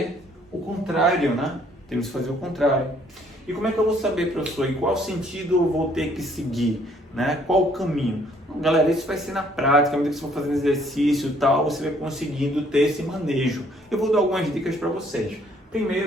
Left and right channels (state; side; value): normal; both; correlation 0.63